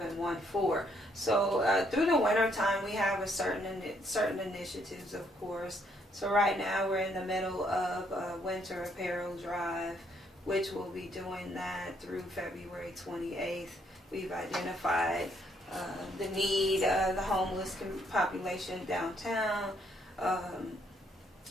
So through the winter time, we have a certain initiatives, of course. So right now we're in the middle of a winter apparel drive, which we'll be doing that through February 28th. We've identified the need, the homeless population downtown.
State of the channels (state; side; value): normal; both; correlation 0.70